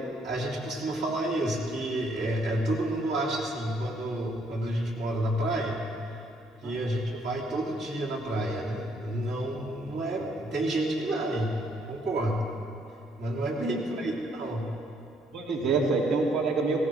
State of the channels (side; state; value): both; normal; correlation 0.68